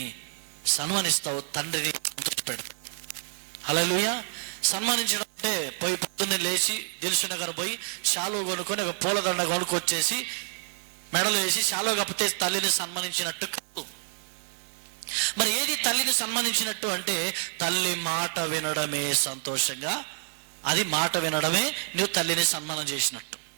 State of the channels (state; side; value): silent; left; digital silence